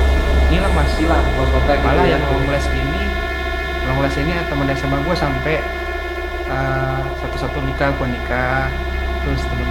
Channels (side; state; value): both; identical; correlation 1.00